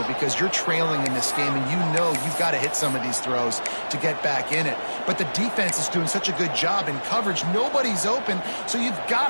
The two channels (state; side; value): inverted; both; correlation -1.00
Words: because you're trailing in this game and you know you've got to hit some of these throws to get back in it. But the defense is doing such a good job in coverage. Nobody's open, so you've